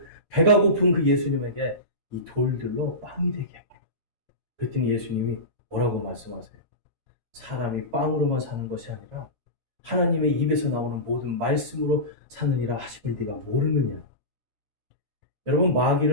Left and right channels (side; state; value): left; late; 13 ms